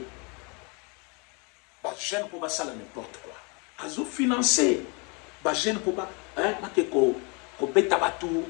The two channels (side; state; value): right; quieter; 32.1 dB